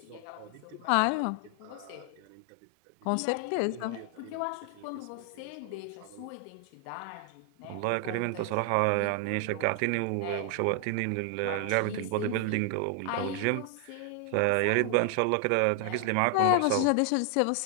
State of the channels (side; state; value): both; different; correlation 0.00